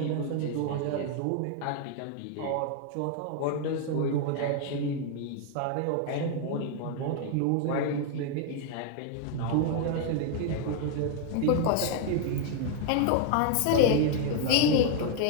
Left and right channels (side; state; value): both; different; correlation 0.00